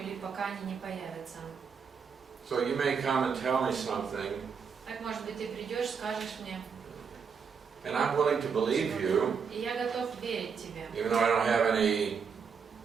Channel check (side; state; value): left; quieter; 6.2 dB